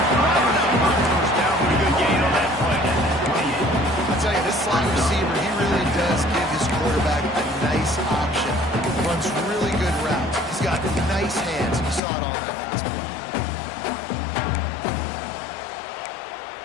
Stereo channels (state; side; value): drops out; right; at 12.0 s